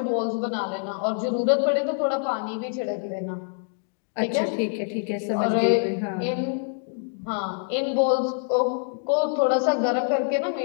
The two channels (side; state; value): right; silent; 59 dB below the other